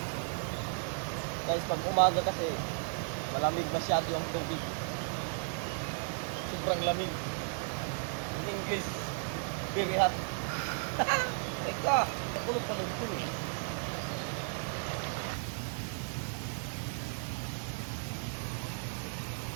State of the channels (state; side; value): silent; left; 55 dB below the other